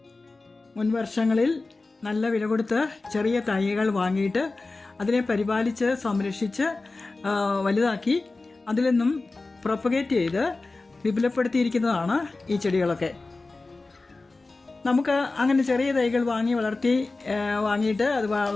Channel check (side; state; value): right; quieter; 3.4 dB